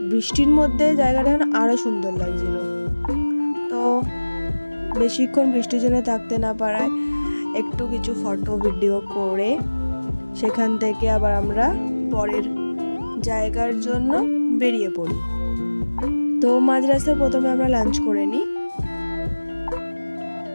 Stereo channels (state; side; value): inverted; both; correlation -1.00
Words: বৃষ্টির মধ্যে জায়গাটা আরও সুন্দর লাগছিল। তো বেশিক্ষণ বৃষ্টির জন্য থাকতে না পারায় একটু কিছু ফটো ভিডিও করে সেখান থেকে আবার আমরা পরের জায়গার জন্য বেরিয়ে পড়ি। তো মাঝ রাস্তায় প্রথমে আমরা লাঞ্চ করে নিই,